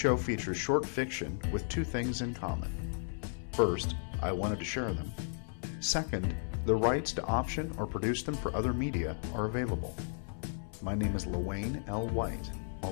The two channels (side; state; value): right; silent; 55 dB below the other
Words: features short fiction with two things in common. First, I wanted to share them. Second, the rights to option or produce them for other media are available. My name is Lewayne L. White.